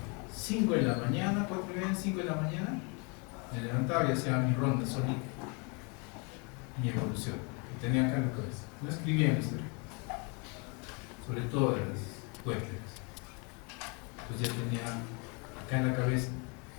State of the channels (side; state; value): right; quieter; 33.0 dB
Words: 5 de la mañana, 4:30, 5 de la mañana, me levantaba y hacía mi ronda solita, mi evolución, que tenía acá en la cabeza. No escribía en la historia, sobre todo de las cuentas. Entonces ya tenía acá en la cabeza